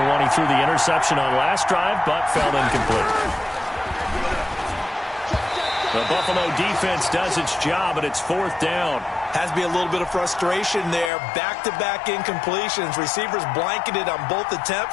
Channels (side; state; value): right; drops out; at 11.1 s